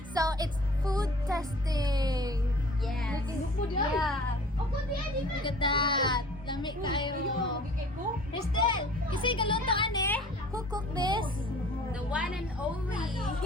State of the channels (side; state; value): both; normal; correlation 0.47